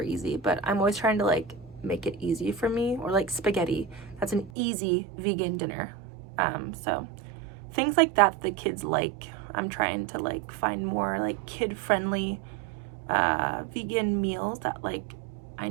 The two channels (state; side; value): drops out; left; at 4.5 s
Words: easy. But I'm always trying to like make it easy for me. Or like spaghetti, that's an easy vegan dinner. So things like that the kids like, I'm trying to like find more like kid-friendly vegan meals that like I